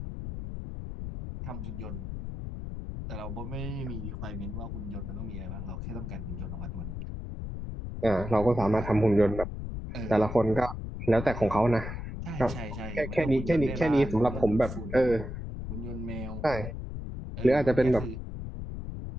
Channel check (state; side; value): noise; left; rumble, 7 dB below the sound